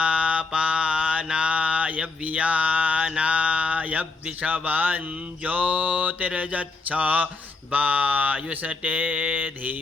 वियानाय विषवं ज्योतिर्यच्छ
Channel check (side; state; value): right; quieter; 3.9 dB